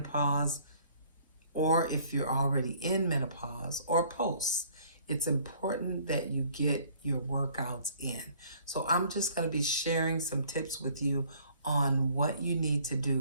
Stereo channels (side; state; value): both; inverted; correlation -0.57